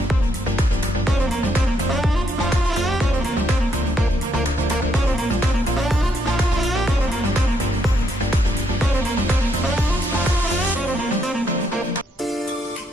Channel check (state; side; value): normal; both; correlation 0.74